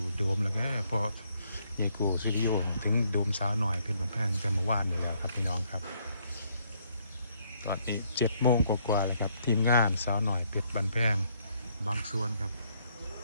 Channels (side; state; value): both; inverted; correlation -0.70